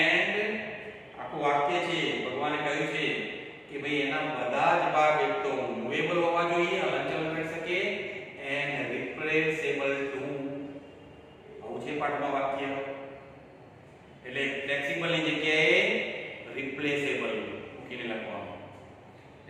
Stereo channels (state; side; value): identical; both; correlation 1.00